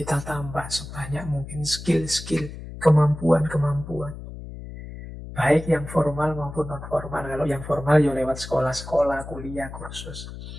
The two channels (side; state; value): left; noise; hum, 11 dB below the sound